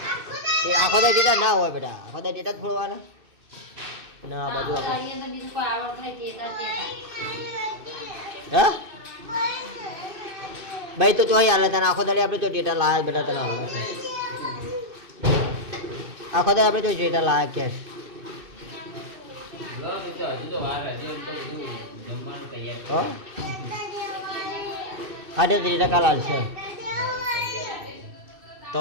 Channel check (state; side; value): late; left; 2.6 ms